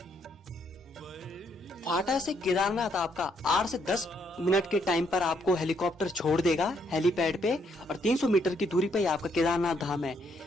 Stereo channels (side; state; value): both; normal; correlation 0.72